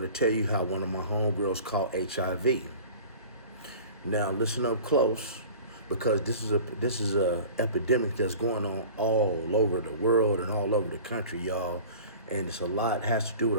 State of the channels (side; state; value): both; inverted; correlation -0.41